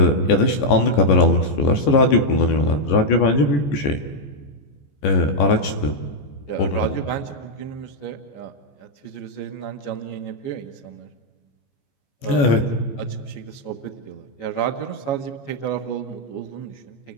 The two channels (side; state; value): right; late; 14 ms